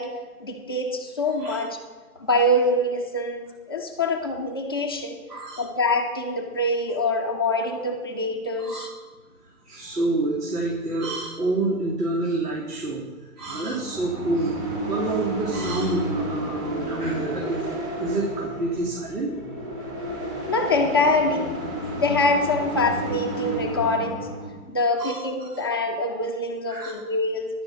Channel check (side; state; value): both; normal; correlation 0.07